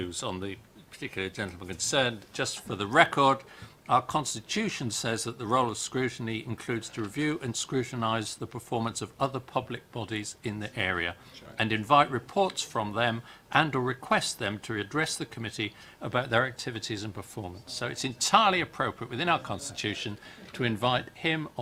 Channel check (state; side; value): identical; both; correlation 1.00